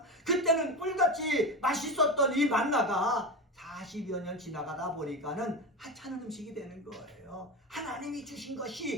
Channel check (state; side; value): normal; both; correlation 0.22